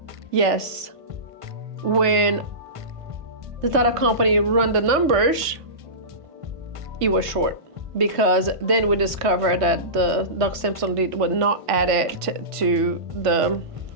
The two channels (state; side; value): late; left; 1.5 ms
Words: Yes. When the title company run the numbers, it was short. because then we discovered that the doc stamps on deed were not added to